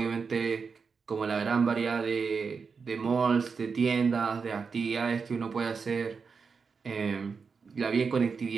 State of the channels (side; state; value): left; quieter; 5.3 dB